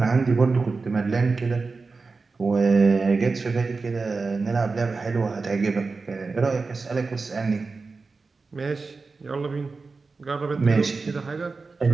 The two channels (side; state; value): left; quieter; 4.2 dB